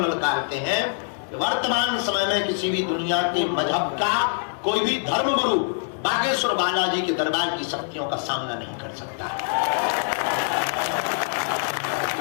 ललकारते हैं। वर्तमान समय में किसी भी दुनिया के मजहब का कोई भी धर्म गुरु बागेश्वर बालाजी के दरबार की शक्तियों का सामना नहीं कर सकता।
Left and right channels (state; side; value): silent; right; 62 dB below the other